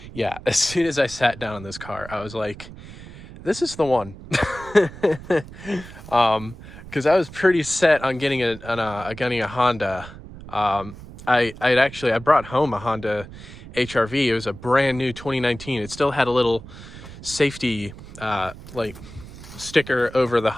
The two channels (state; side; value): noise; right; rumble, 15 dB below the sound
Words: yeah, as soon as I sat down in this car, I was like, this is the one. Because I was pretty set on getting a Honda. I brought home a Honda HR-V. It was a brand new 2019. It still had a little safety like sticker over the